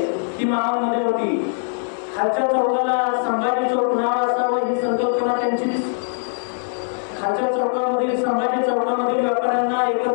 ती मामांमध्ये होती. खालच्या चौकाला संभाजी चौक नाव असावं ही संकल्पना त्यांचीच. खालच्या चौकामधील संभाजी चौकामधील व्यापाऱ्यांना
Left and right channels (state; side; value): silent; right; digital silence